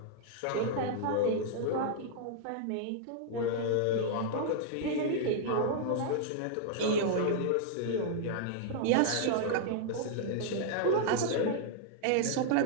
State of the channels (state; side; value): different; both; correlation -0.01